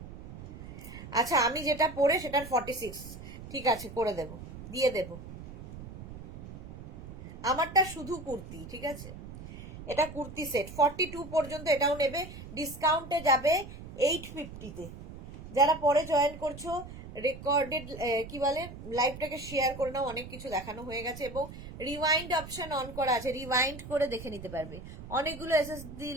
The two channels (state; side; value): noise; right; rumble, 13 dB below the sound